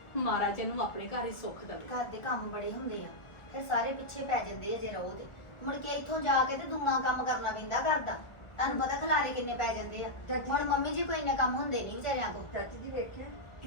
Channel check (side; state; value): right; late; 1.4 ms